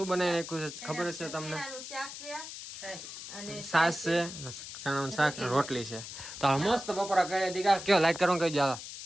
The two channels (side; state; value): left; noise; hiss, 10 dB below the sound